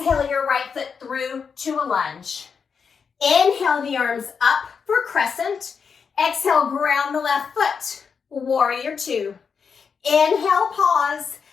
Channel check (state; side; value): quieter; right; 6.0 dB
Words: your right foot through to a lunge. Inhale the arms up for crescent. Exhale, ground the left foot. Warrior two. Inhale, pause.